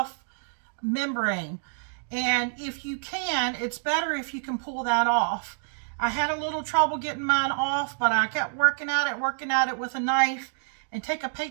membrane. And if you can, it's better if you can pull that off. I had a little trouble getting mine off, but I kept working at it with a knife. And take a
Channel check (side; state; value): left; silent; digital silence